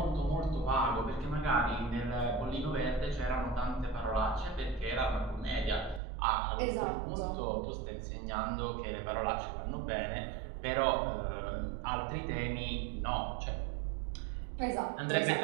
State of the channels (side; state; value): left; drops out; at 6.0 s